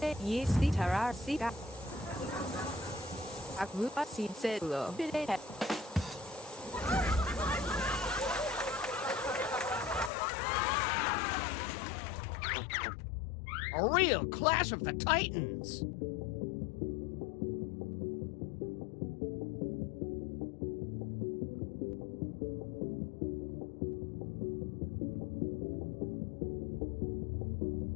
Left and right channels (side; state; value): right; drops out; at 10.1 s